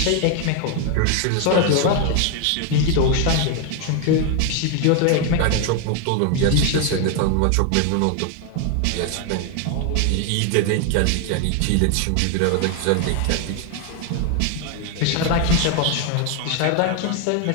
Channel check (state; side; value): different; both; correlation 0.01